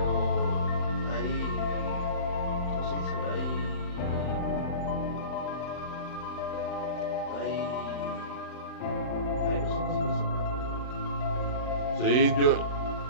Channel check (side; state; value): right; late; 39 ms